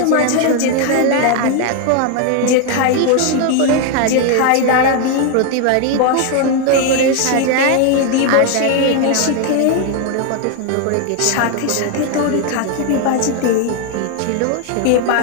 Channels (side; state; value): both; different; correlation 0.01